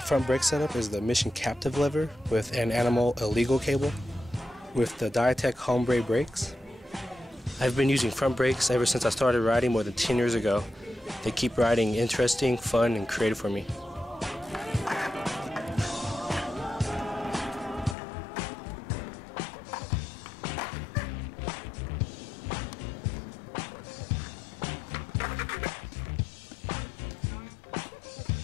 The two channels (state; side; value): drops out; right; at 17.9 s